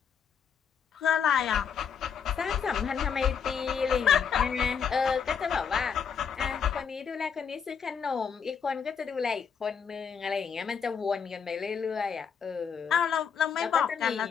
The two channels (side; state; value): right; quieter; 6.9 dB